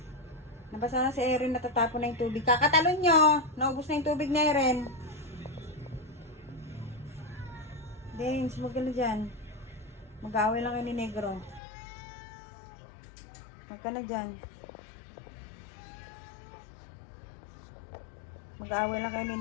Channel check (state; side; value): drops out; right; at 11.6 s